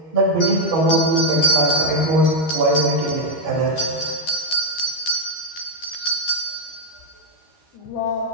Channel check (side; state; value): right; late; 13 ms